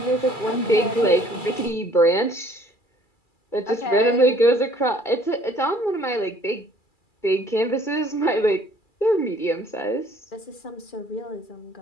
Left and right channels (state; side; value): late; right; 2.3 ms